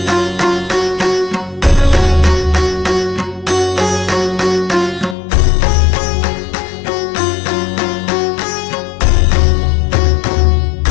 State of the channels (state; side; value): drops out; right; at 5.2 s